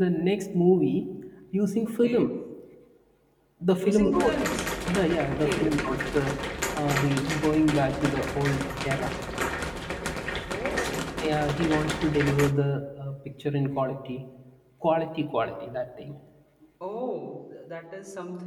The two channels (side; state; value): both; identical; correlation 1.00